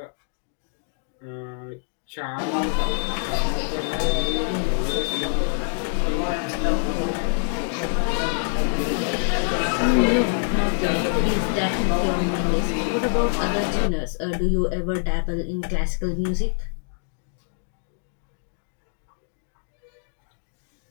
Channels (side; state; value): right; silent; 61 dB below the other